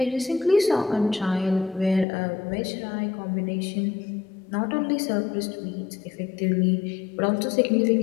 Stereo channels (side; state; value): right; drops out; at 2.1 s